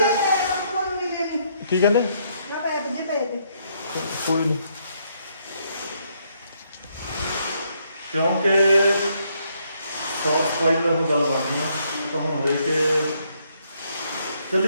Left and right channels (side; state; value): both; inverted; correlation -0.72